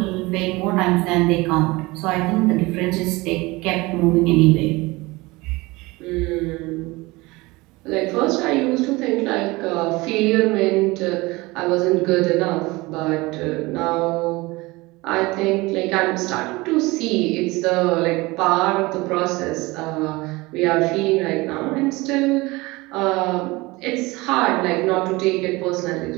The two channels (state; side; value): quieter; left; 22.3 dB